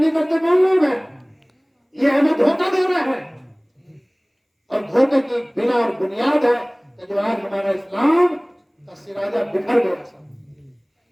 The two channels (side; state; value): both; identical; correlation 1.00